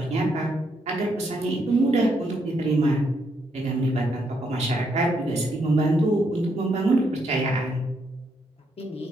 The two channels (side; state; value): both; normal; correlation 0.76